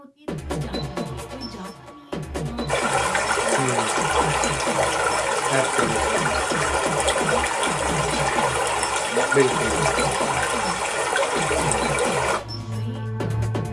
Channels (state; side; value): identical; both; correlation 1.00